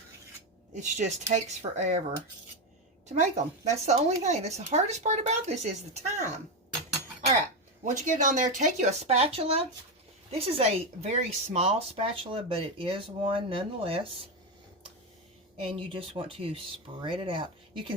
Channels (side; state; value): both; normal; correlation 0.11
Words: It just takes forever to make them. That's the only thing. That's the hardest part about this is the time. All right. Once you get it on there, take you a spatula. This is a very small spatula, but it is one nonetheless. And you just want to spread it out. You